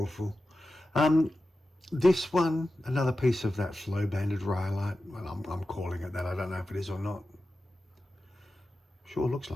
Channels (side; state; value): both; normal; correlation 0.93